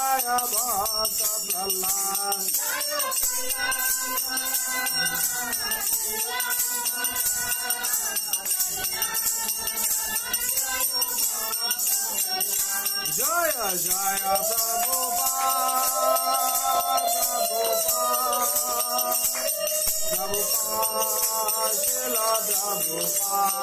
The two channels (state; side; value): identical; both; correlation 1.00